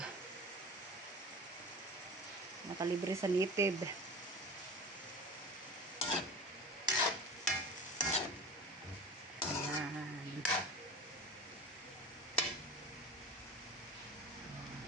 nakalibre sa native.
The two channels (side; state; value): both; normal; correlation 0.34